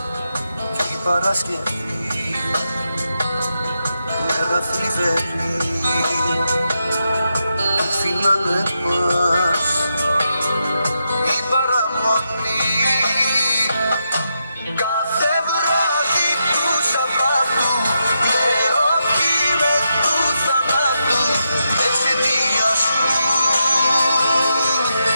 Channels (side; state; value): both; inverted; correlation -0.84